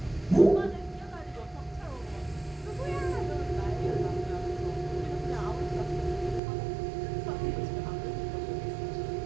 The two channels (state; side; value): drops out; left; at 6.4 s